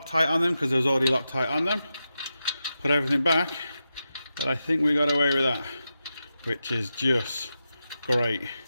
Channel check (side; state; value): both; inverted; correlation -0.89